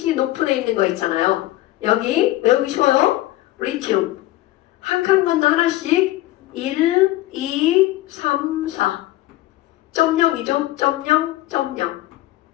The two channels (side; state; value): right; quieter; 16.4 dB